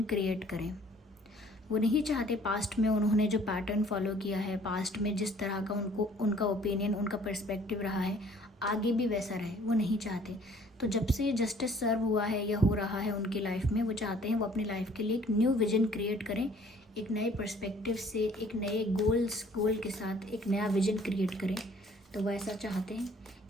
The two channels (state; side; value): normal; both; correlation 0.56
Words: क्रिएट करें। वो नहीं चाहते पास्ट में उन्होंने जो पैटर्न फॉलो किया है, पास्ट में जिस तरह का उनका ओपिनियन, उनका पर्सपेक्टिव रहा है, आगे भी वैसा रहे, वो नहीं चाहते। तो जब से जस्टिस सर्व हुआ है या हो रहा है उनकी लाइफ में, वो चाहते हैं वो अपनी लाइफ के लिए एक न्यू विजन क्रिएट करें, एक नए पर्सपेक्टिव से, एक नए गोल के साथ एक नया विजन क्रिएट करें। तो वो ऐसा चाहते हैं,